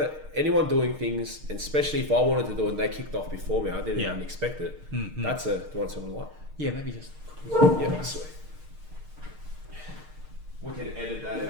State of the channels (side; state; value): left; late; 6.5 ms